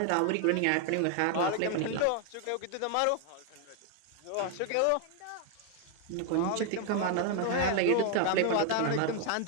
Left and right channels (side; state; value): both; different; correlation 0.00